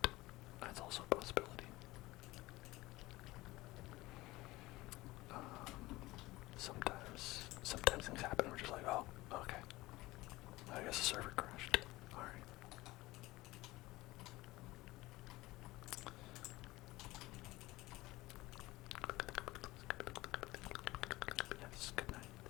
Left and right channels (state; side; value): quieter; right; 19.4 dB